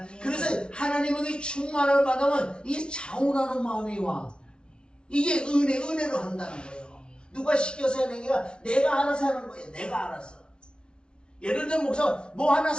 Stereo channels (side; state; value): right; late; 0.056 ms